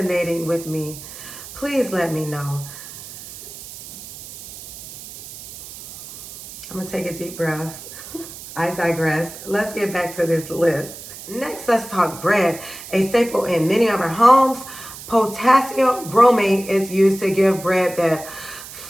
with me, please let me know. I'm gonna take a deep breath. I digress. Let's get back to this list. Next, let's talk bread. A staple in many of our homes, potassium bromate is used to give bread that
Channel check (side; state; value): right; noise; hiss, 14 dB below the sound